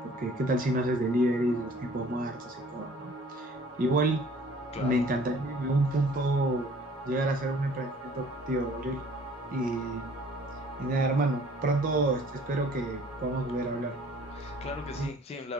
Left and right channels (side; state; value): both; normal; correlation 0.53